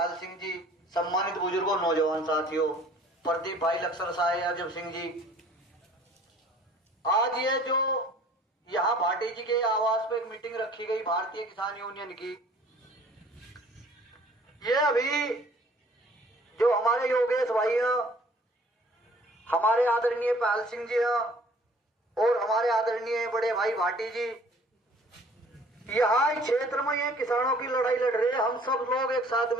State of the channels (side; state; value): both; normal; correlation 0.53